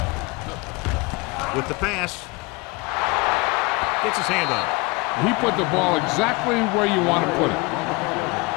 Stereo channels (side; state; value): right; quieter; 25.8 dB